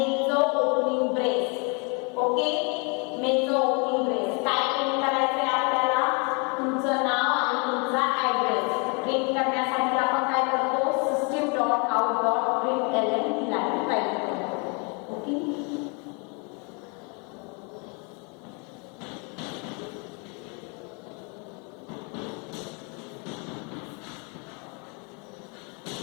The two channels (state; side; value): quieter; right; 34.2 dB